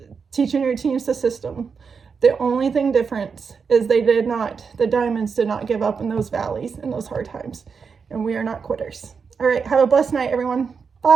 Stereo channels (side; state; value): left; quieter; 5.7 dB